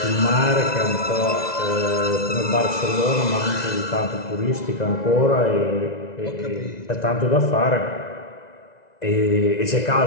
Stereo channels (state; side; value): late; right; 2.0 ms